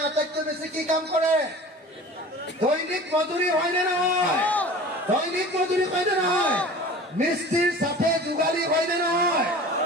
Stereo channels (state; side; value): normal; both; correlation 0.40